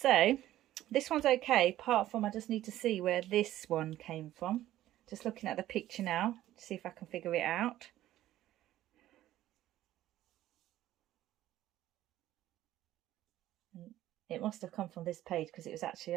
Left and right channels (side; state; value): left; quieter; 13.9 dB